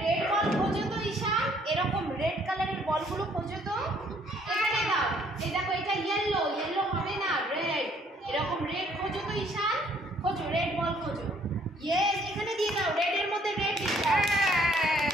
রেড বল খোঁজো তো ঈশান, এরকম রেড কালারের বলগুলো খোঁজো তো। এখানে দাও। এই দেখো এটা ইয়েলো, ইয়েলো হবে না, রেড। এরকম রেড খোঁজো তো ঈশান, খোঁজো রেড বল খোঁজো। ইয়েস, এখানে দিয়ে দাও, রেড এর মধ্যে রেড দিয়ে দাও।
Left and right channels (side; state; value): both; normal; correlation 0.63